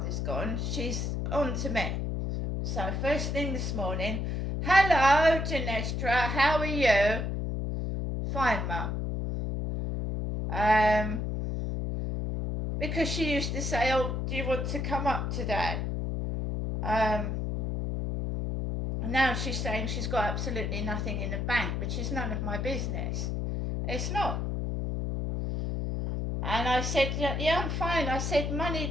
gone, she's on to me. So first thing this morning, hello Genestra, how are you? Fine mum. Because she used to say, oh, do you want to come up today? Now she's saying she's got absolutely nothing in the bank, which is none of my business. It's not. And I said, yeah, I'm fine. I said, money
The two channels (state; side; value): noise; left; hum, 1 dB below the sound